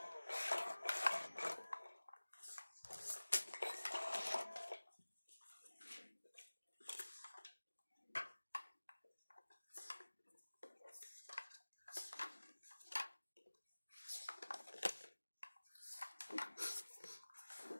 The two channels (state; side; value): inverted; both; correlation -1.00